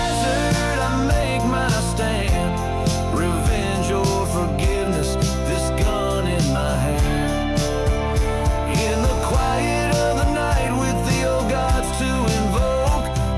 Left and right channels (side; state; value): both; identical; correlation 1.00